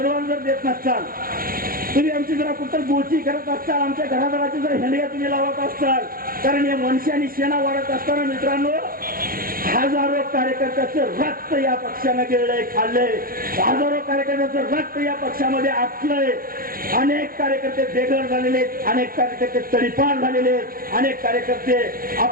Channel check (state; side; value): late; left; 0.42 ms